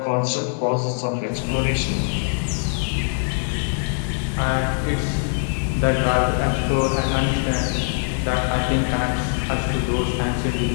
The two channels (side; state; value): right; silent; digital silence